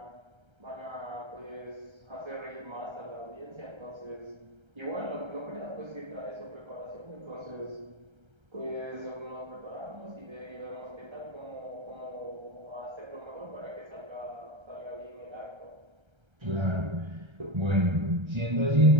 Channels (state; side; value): late; left; 1.3 ms